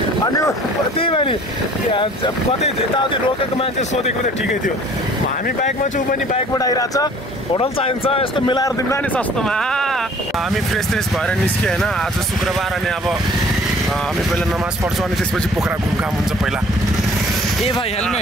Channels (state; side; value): normal; both; correlation 0.52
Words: अनि त्यही भयो नि कतै यताउति रोकेको मान्छे सोधेको त ठिकै थियो हामी बाइकमा छु पनि बाइकबाट आइरहेछ होटल चाहिन्छ यस्तो मिलाएर दिउँला नि सस्तोमा हामी फ्रेस भएर निस्क्यो होइन आज शुक्रबार अनि अब हामी पहिला नमाज पढ्छौँ अनि त्यसपछि पोखरा घुमघाम हुन्छ पहिला ए भाइ